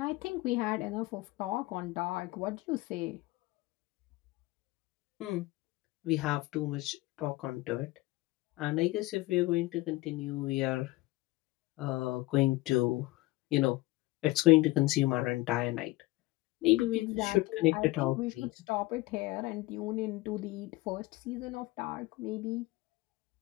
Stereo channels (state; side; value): quieter; right; 20.1 dB